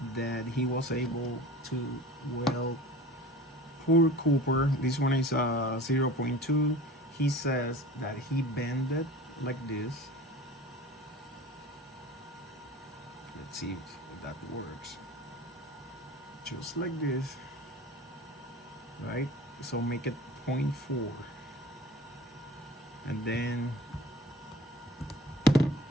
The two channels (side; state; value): both; normal; correlation 0.39